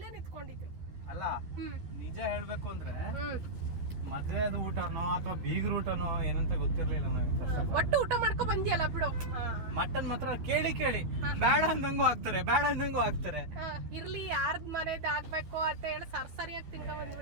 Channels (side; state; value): left; late; 12 ms